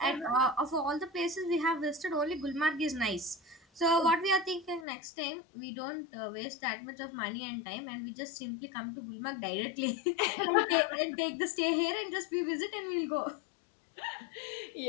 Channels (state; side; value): drops out; right; at 4.9 s